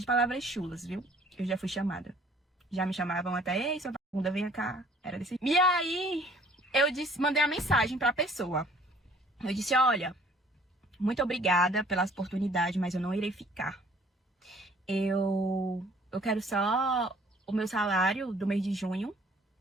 palavras chulas, viu? Eu já fui chamada. Já me chamavam até, ei, sua vagabunda, venha cá. Era desse... E aí, eu mandei a mensagem pra pessoa. Eu disse, olha... Muito obrigada pela oportunidade, mas eu não irei ficar. Eu quero só o meu salário do mês de junho,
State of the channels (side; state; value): both; normal; correlation 0.57